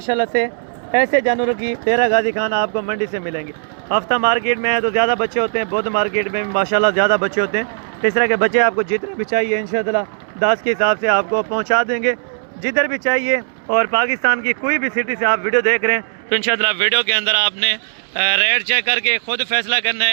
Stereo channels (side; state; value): left; silent; 67 dB below the other